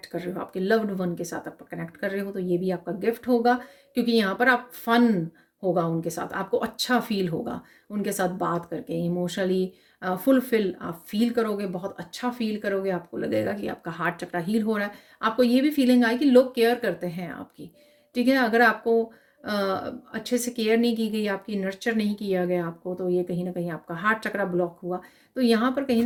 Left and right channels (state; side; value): identical; both; correlation 1.00